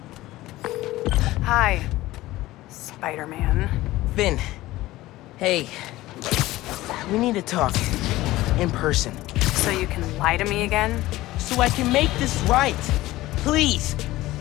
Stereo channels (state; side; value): quieter; right; 17.3 dB